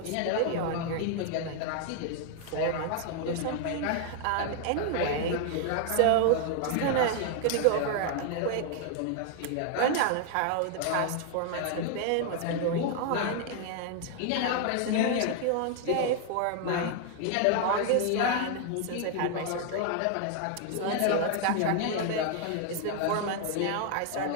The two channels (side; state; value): both; different; correlation 0.00